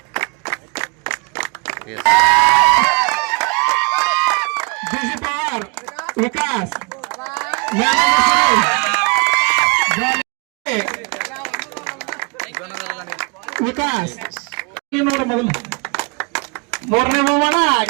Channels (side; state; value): left; quieter; 31.2 dB